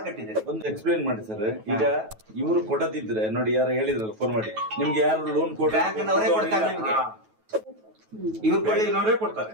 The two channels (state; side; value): late; left; 9.2 ms